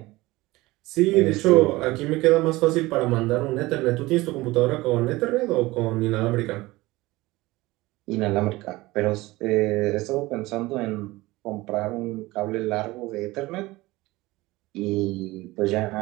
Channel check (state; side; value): quieter; left; 20.0 dB